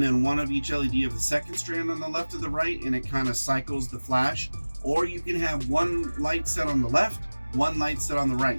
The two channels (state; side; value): inverted; both; correlation -1.00